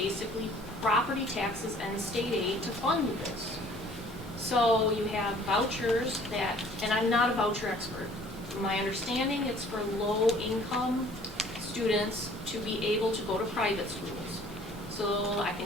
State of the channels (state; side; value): normal; both; correlation 0.54